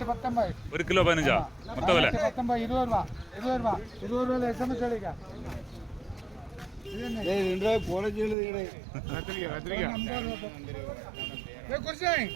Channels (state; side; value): drops out; left; at 8.3 s